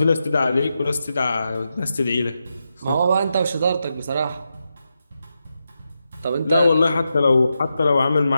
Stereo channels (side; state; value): both; inverted; correlation -0.87